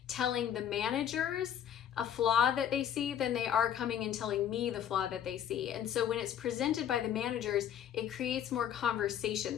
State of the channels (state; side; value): quieter; right; 9.7 dB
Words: telling the managers a flaw that they see than they are coming and telling me the flaw that they see. And so when it's presented by the managers, it creates more conversation.